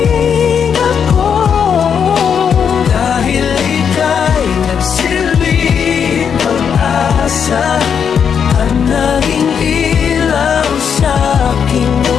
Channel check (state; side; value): quieter; right; 7.3 dB